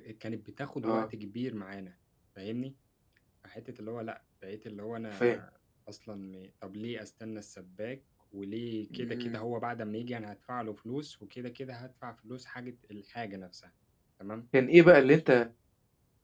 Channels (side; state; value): both; identical; correlation 1.00